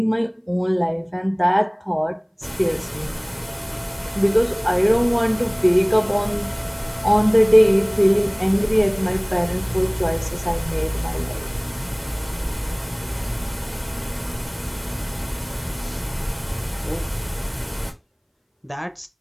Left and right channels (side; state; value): both; identical; correlation 1.00